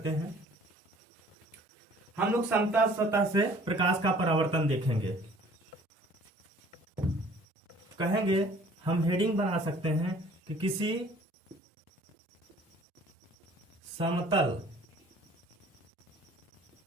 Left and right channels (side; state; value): both; normal; correlation 0.53